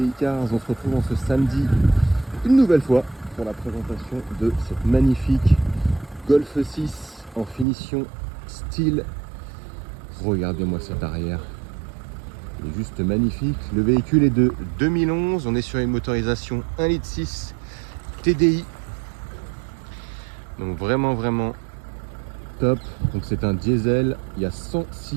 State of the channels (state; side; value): drops out; left; at 7.7 s